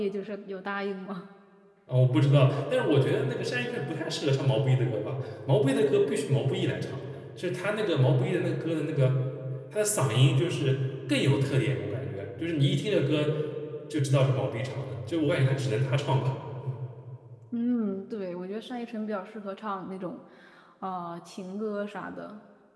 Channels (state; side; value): identical; both; correlation 1.00